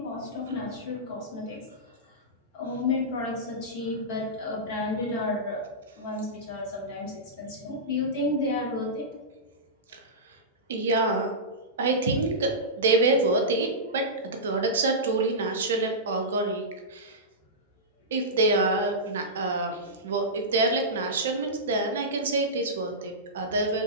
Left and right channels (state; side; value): normal; both; correlation -0.15